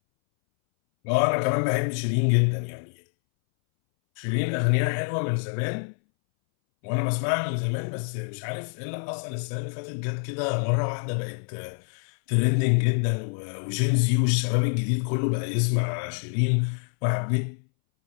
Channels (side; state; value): right; silent; 61 dB below the other